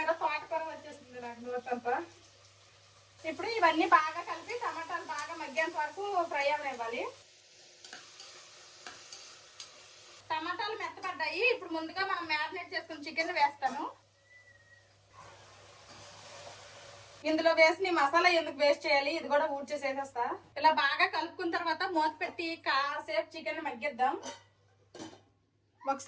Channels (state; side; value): identical; both; correlation 1.00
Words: తోటకూర వచ్చేసింది నాకు నోటంతా. ఇప్పుడు ఇవన్నీ బాగా కలిపి టమాటాలు బాగా మగ్గేంత వరకు ఫ్రై అవనివ్వాలి. టమాటాలు మెత్తపడ్డాయి. ఇప్పుడు ముందుగా మనం మ్యారినేట్ చేసుకుని చికెన్ వేస్తాను. ఇందులో వేసి మసాలా ఎందుకు వేస్ట్ చేయాలి, ఇది కూడా ఊడ్చేసేసేస్తా. ఇలా బాగా కలుపుకున్న తర్వాత మూత పెట్టి కాసేపు చికెన్ మగ్గిద్దాం.